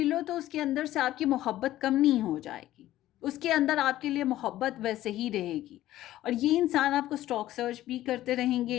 तो उसके अंदर से आपकी मोहब्बत कम नहीं हो जाएगी। उसके अंदर आपके लिए मोहब्बत वैसे ही रहेगी। और ये इंसान आपको स्टॉक सर्च भी करते रहेंगे,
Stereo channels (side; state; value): right; quieter; 14.4 dB